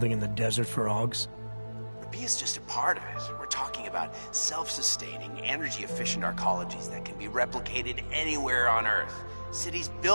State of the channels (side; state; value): both; inverted; correlation -1.00